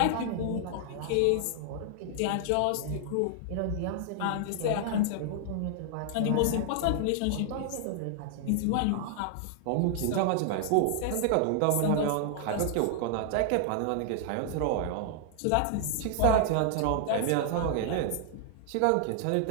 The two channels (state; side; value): different; both; correlation 0.00